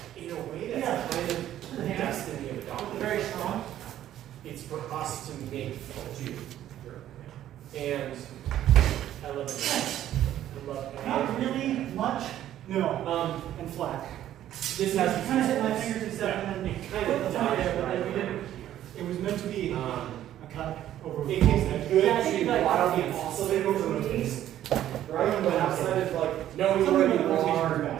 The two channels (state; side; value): quieter; left; 12.1 dB